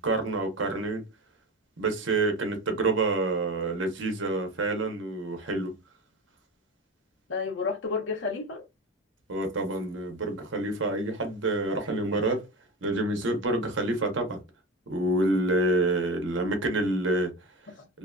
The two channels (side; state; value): both; normal; correlation 0.26